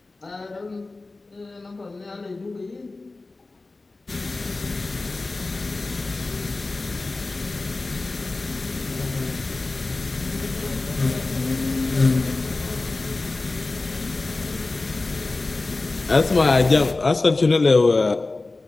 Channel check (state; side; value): quieter; right; 3.4 dB